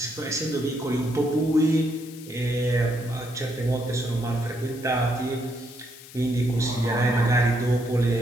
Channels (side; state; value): left; noise; hiss, 18 dB below the sound